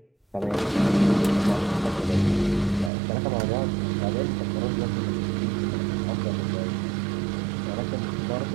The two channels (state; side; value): drops out; left; at 2.9 s